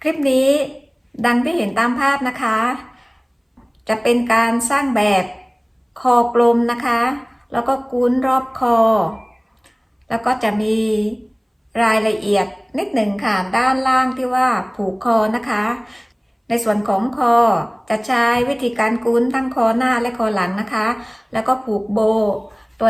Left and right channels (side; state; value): both; identical; correlation 1.00